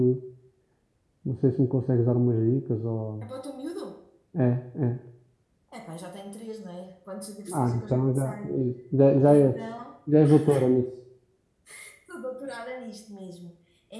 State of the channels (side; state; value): both; identical; correlation 1.00